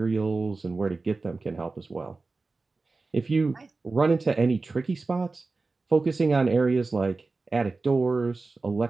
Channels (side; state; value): left; quieter; 3.7 dB